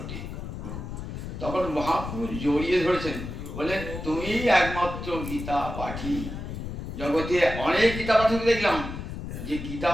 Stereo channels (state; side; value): noise; left; rumble, 7 dB below the sound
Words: ওঠে। তখন মহাপুরুষ জড়িয়ে ধরেছেন, বলেন তুমি একমাত্র গীতা পাঠী। জগতে অনেক গীতা পাঠক দেখলাম যে গীতা